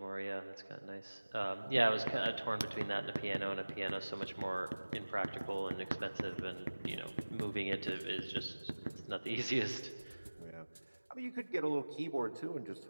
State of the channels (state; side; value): inverted; both; correlation -1.00